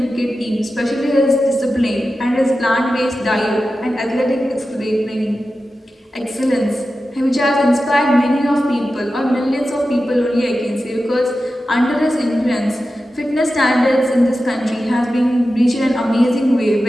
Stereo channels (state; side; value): normal; both; correlation 0.93